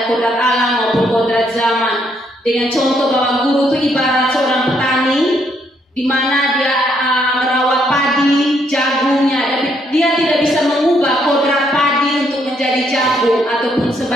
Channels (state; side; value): normal; both; correlation 0.72